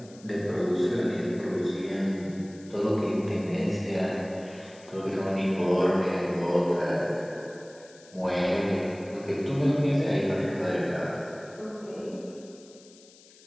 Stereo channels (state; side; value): noise; left; hiss, 24 dB below the sound